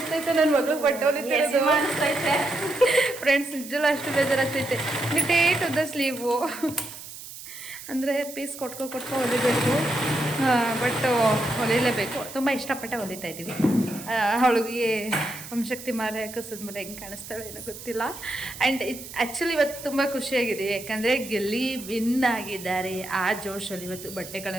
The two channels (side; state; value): right; noise; hiss, 13 dB below the sound